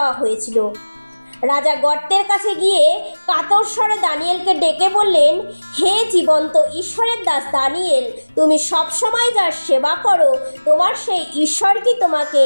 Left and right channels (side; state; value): both; inverted; correlation -1.00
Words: হয়েছিল। রাজা গর্তের কাছে গিয়ে কাতর স্বরে দানিয়েলকে ডেকে বললেন, হে জীবন্ত ঈশ্বরের দাস দানিয়েল, তুমি সবসময় যার সেবা করো, তোমার সেই ঈশ্বর কি তোমাকে